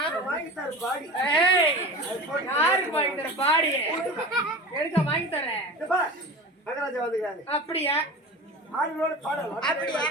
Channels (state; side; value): normal; both; correlation 0.33